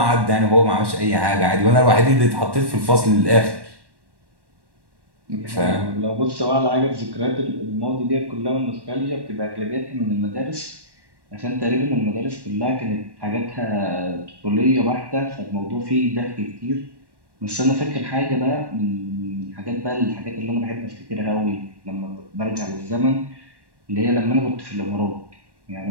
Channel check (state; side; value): late; left; 1.1 ms